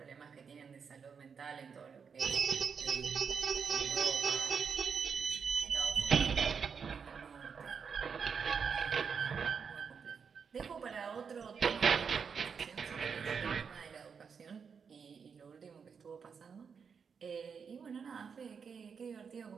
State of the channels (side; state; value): left; quieter; 6.2 dB